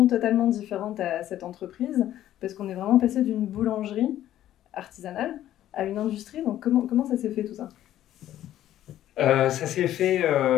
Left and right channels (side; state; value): right; quieter; 12.5 dB